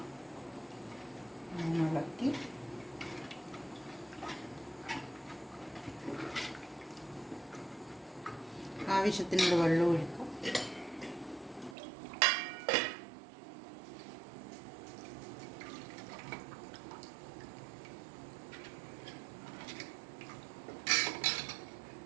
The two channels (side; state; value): left; drops out; at 11.8 s